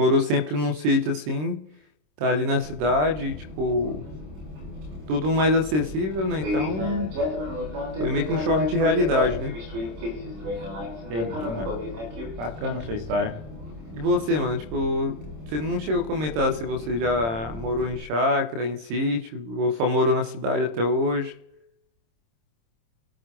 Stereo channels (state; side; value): late; left; 26 ms